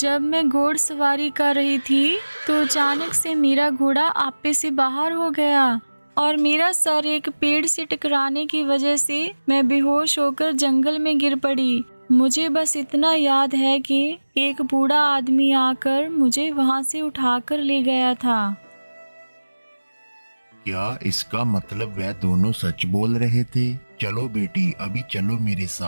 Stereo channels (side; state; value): both; inverted; correlation -1.00